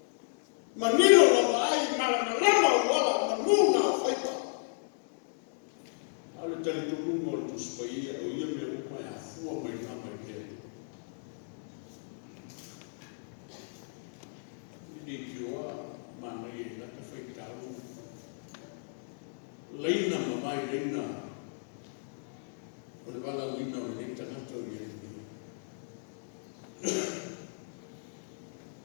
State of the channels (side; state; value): right; silent; digital silence